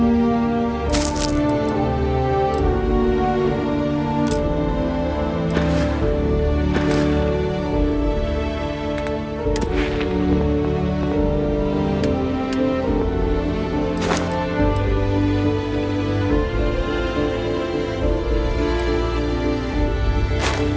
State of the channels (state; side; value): identical; both; correlation 1.00